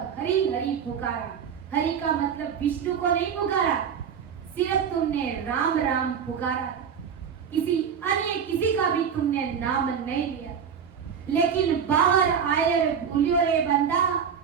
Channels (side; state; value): left; quieter; 7.3 dB